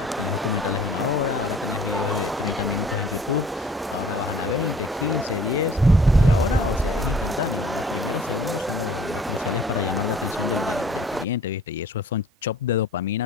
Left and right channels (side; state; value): both; normal; correlation 0.52